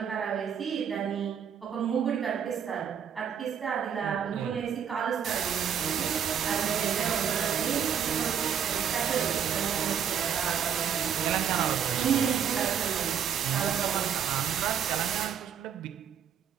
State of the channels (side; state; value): left; quieter; 8.2 dB